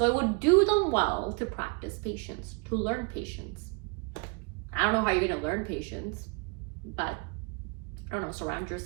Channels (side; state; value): left; quieter; 32.5 dB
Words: it would do them well to practice patience, to learn patience. I don't know how you're gonna learn patience, but I don't know, surround